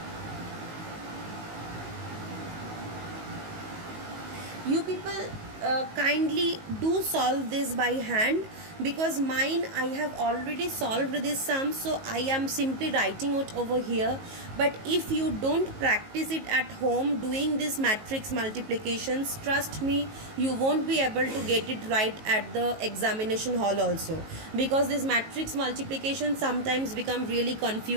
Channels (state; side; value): late; left; 19 ms